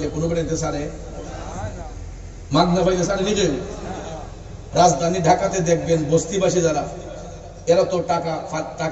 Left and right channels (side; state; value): both; identical; correlation 1.00